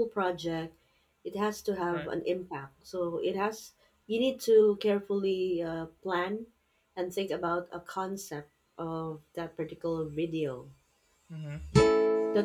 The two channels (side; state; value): both; identical; correlation 1.00